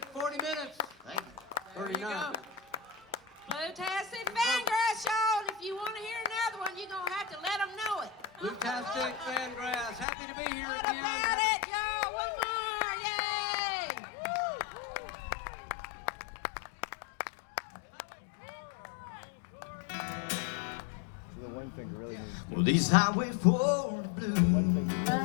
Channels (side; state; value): right; drops out; at 10.1 s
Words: 40 minutes. Thank you. 39. Bluetastic Fangrass, y'all. And if you want to hear another one, you're going to have to let them know it. Bluetastic Fangrass. Happy to be here What again. about it, y'all? One more. Yay! Well, these Highway 4 blues.